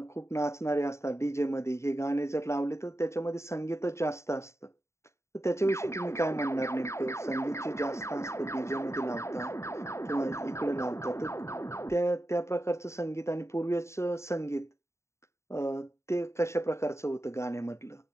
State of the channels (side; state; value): right; late; 0.14 ms